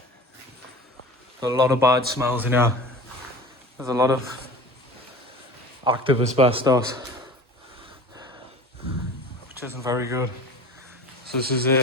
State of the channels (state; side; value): normal; both; correlation 0.38